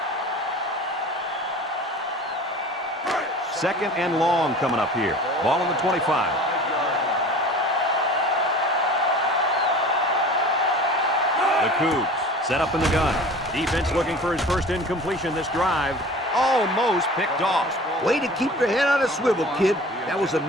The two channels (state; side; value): normal; both; correlation 0.41